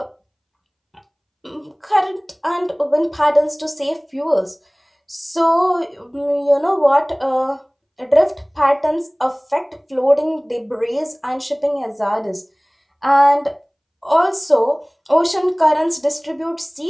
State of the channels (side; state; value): both; identical; correlation 1.00